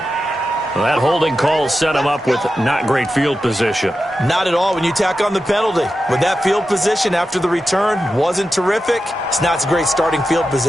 Well, that holding call set him up with not great field position. Not at all when you tack on the penalty. With that field position after the return wasn't terrific, it's not a great starting field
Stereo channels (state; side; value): normal; both; correlation 0.91